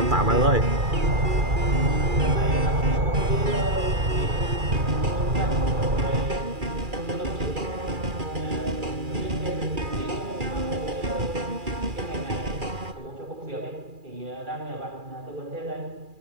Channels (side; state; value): left; late; 2.4 ms